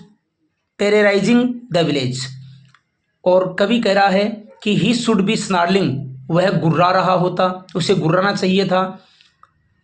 terrorising the village. और कवि कह रहा है कि ही शुड बी स्नार्लिंग, वह गुर्रा रहा होता, उसे गुर्राना चाहिए था।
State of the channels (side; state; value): both; identical; correlation 1.00